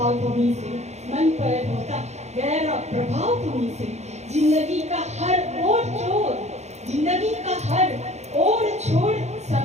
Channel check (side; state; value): left; late; 0.32 ms